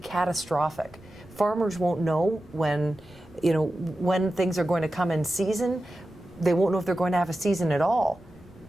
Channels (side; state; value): right; noise; rumble, 27 dB below the sound